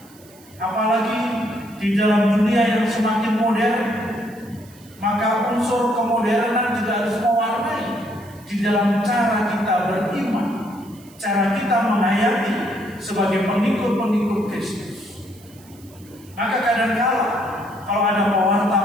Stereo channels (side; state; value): right; noise; hiss, 25 dB below the sound